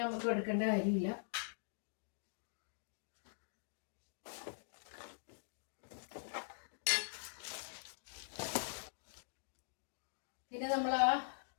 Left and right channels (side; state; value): right; silent; digital silence